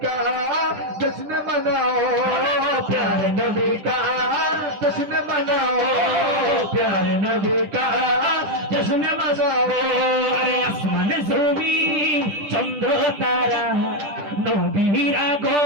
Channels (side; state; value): left; late; 10 ms